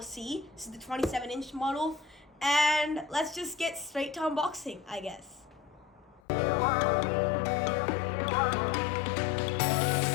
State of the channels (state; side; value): drops out; right; at 6.2 s